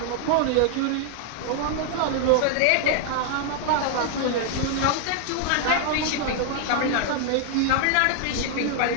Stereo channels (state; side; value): different; both; correlation 0.00